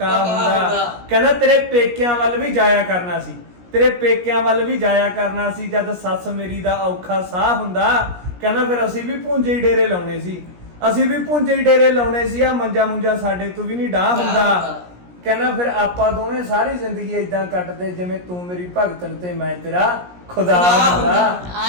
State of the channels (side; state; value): left; late; 17 ms